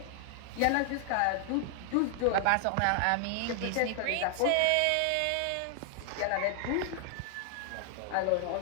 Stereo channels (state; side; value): different; both; correlation 0.00